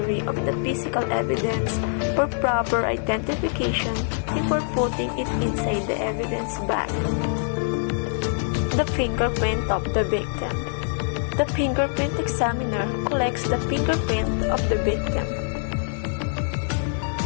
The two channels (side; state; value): right; silent; 62 dB below the other